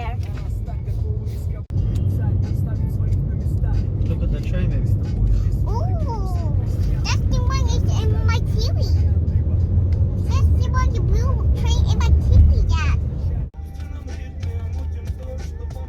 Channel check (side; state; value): both; identical; correlation 1.00